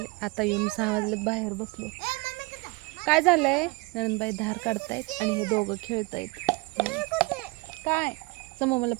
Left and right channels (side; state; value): left; quieter; 25.5 dB